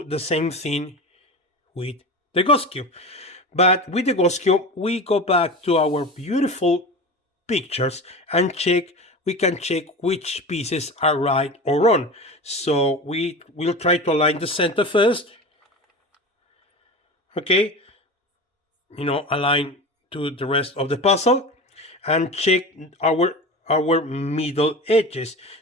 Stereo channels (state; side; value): normal; both; correlation 0.29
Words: the same thing with the ghost cube, but with the ghost cube we go back to our beautiful pictures and we can check which pieces are right or wrong. So we will try to align the center first. Okay, align to the rest of the puzzle and check our middle edges.